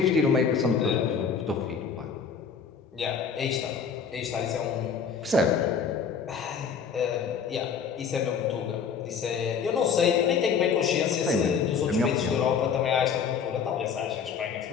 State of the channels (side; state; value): right; quieter; 6.4 dB